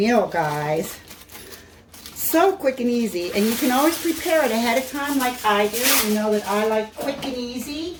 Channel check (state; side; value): identical; both; correlation 1.00